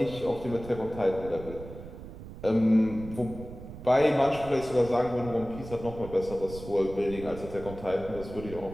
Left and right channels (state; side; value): noise; right; rumble, 13 dB below the sound